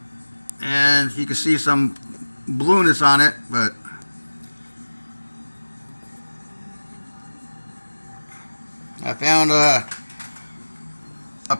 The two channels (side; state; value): both; inverted; correlation -1.00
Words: and you can see some blueness on it, but I found a